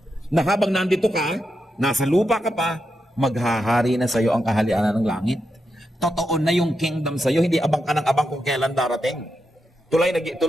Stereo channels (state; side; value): normal; both; correlation 0.86